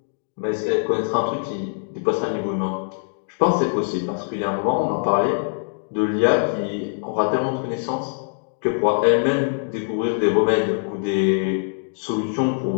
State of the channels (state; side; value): silent; right; digital silence